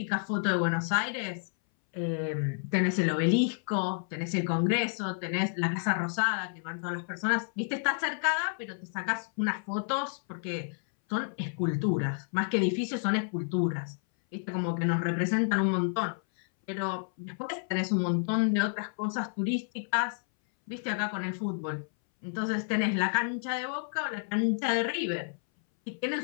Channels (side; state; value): right; silent; 58 dB below the other